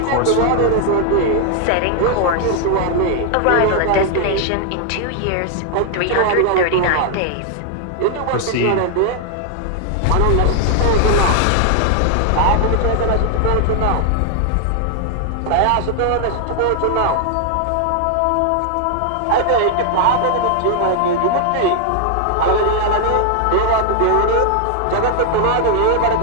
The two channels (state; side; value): different; both; correlation 0.00